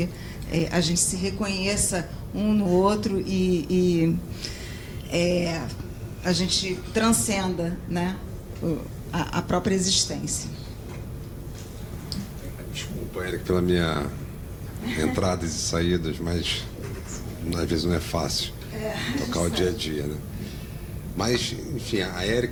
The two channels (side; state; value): both; identical; correlation 1.00